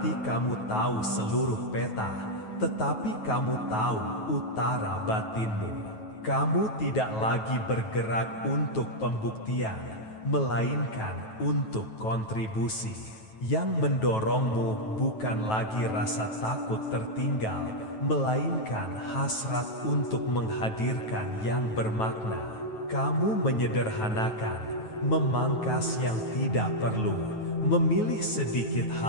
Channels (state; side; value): late; right; 9.2 ms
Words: kamu tahu seluruh peta, tetapi kamu tahu utara batinmu. Kamu tidak lagi bergerak untuk pembuktian, melainkan untuk kontribusi. Yang mendorongmu bukan lagi rasa takut tertinggal, melainkan hasrat untuk menghadirkan yang bermakna. Kamu menyederhanakan, memangkas yang tidak perlu, memilih sedikit